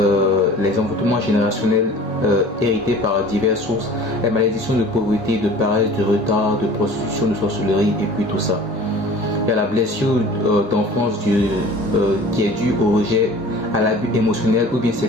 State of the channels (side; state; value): both; normal; correlation 0.44